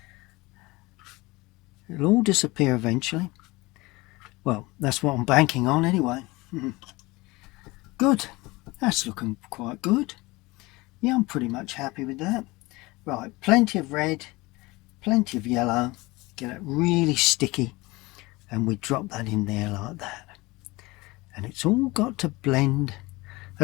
It'll all disappear eventually. Well, that's what I'm banking on anyway. Good. That's looking quite good. Yeah, I'm pretty much happy with that. Right, plenty of red, plenty of yellow. Get it really sticky, and we drop that in there like that. And it's all got to blend.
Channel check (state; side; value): quieter; right; 22.2 dB